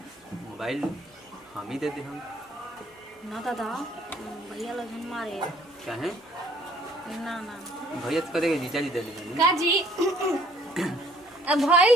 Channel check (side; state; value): both; normal; correlation 0.60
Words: मोबाइल हम ही दे दे हम ना दादा, भैया लगन मारे चाहे ना ना भैया तो करेगा जीजा जी दे देंगे का जी अब भइल